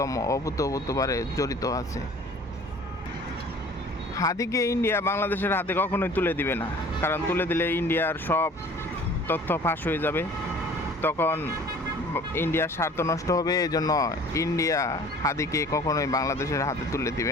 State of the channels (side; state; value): both; normal; correlation 0.49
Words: অভূতপূর্বভাবে জড়িত আছে। হাদিকে ইন্ডিয়া বাংলাদেশের হাতে কখনোই তুলে দিবে না, কারণ তুলে দিলে ইন্ডিয়ার সব তথ্য ফাঁস হয়ে যাবে, তখন ইন্ডিয়ার স্বার্থ নষ্ট হবে। এই জন্য ইন্ডিয়া হাদিকে কখনোই বাংলাদেশের হাতে তুলে